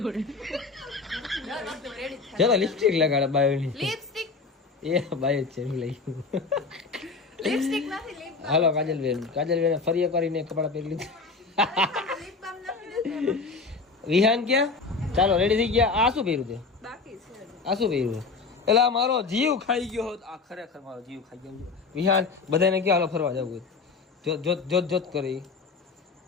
ચાલો લિપસ્ટિક લગાડે બાયોની. લિપસ્ટિક એ બાય જ છે લઈ. લિપસ્ટિક નથી લિપ હાલો કાજલબેન ફરી એક કરીને કપડા પહેરી લીધા. લિપ બામ નથી વિહાન ક્યાં? ચાલો રેડી થઈ ગયા. આ શું પહેર્યું તે? બાકી છે. આ શું પહેર્યું? એટલે આ મારો જીવ ખાઈ ગયો હોત. આ ખરેખર મારો જીવ ખાઈ ગયો. વિહાન બધાને ક્યાં હાલો ફરવા જવું? જોત કરી.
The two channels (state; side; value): quieter; right; 4.4 dB